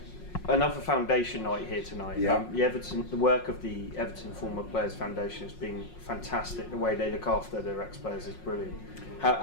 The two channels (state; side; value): late; right; 5.5 ms